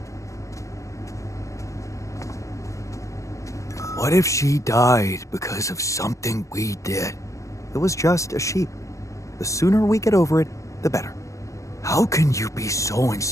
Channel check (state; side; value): late; right; 0.15 ms